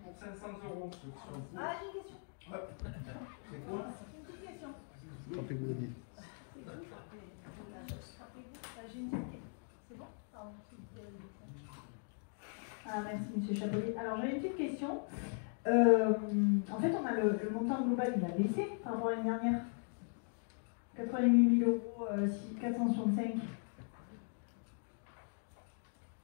pour 500 euros. Ceux qui sont pour. Ah, j'ai une question. Hop. C'est quoi? Une petite question. Rappelez-vous le dit. C'est tout. J'ai une petite question. C'est bon? Pardon, Ah, merci, monsieur Chapelier. Alors, j'ai une petite question. En fait, on a le montant global, il a baissé par rapport à l'année dernière. 88 000 euros, 465.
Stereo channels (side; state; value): right; silent; 52 dB below the other